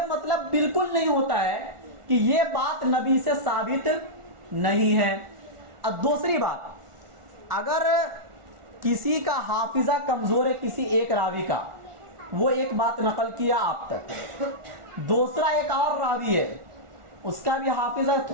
مطلب بالکل نہیں ہوتا ہے کہ یہ بات نبی سے ثابت نہیں ہے۔ اب دوسری بات، اگر کسی کا حافظہ کمزور ہے، کسی ایک راوی کا، وہ ایک بات نقل کیا آپ تک، دوسرا ایک اور راوی ہے، اس کا بھی حافظہ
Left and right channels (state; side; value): late; left; 1.4 ms